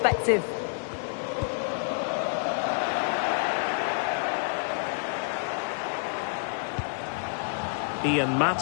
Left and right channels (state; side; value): silent; right; digital silence